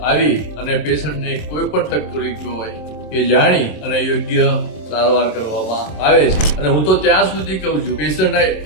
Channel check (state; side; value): late; right; 26 ms